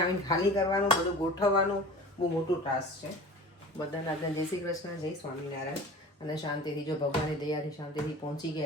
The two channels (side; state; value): both; normal; correlation 0.39